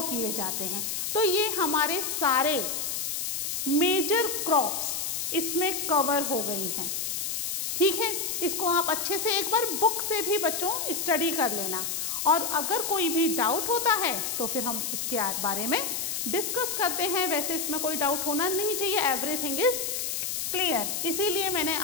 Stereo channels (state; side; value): noise; left; hiss, 2 dB below the sound